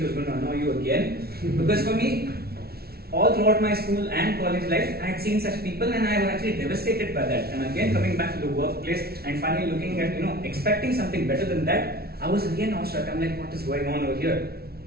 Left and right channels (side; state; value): left; late; 0.45 ms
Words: who's going to annoy you again? Because for me, all throughout my school and college life, I had seen such people, and I was actually devastated by that. And again, coming back to the workplace and finally looking at, expecting something better than that, I was again awestruck. I'm like, what is going on over here?